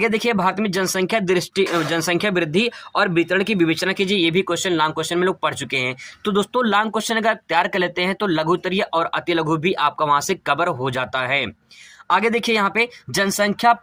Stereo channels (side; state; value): both; identical; correlation 1.00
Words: देखिए भारत में जनसंख्या वृद्धि और वितरण की विवेचना कीजिए, ये भी क्वेश्चन लॉन्ग क्वेश्चन में लोग पढ़ चुके हैं। तो दोस्तों लॉन्ग क्वेश्चन अगर तैयार कर लेते हैं तो लघु उत्तरीय और अति लघु भी आपका वहां से कवर हो जाता है। आगे देखिए यहाँ पे जनसंख्या